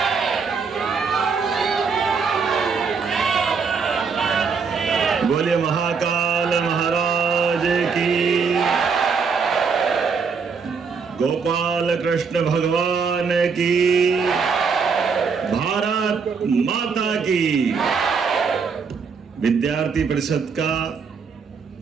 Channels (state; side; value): quieter; left; 5.5 dB